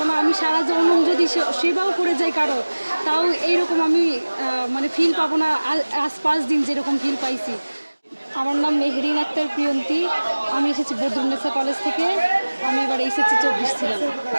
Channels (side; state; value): both; inverted; correlation -1.00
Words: না। আমি সারা জনম যদি সেবাও করে যাই কারো, তাও এইরকম আমি মানে ফিল পাবো না আজ 5 দিন যেরকম ফিল পাইছি। আমার নাম মেহরিন আক্তার প্রিয়ন্তী। আমি এসেছি বদরুন্নেসা কলেজ থেকে। আমি এবার এইচএসসি 24 ছিলাম।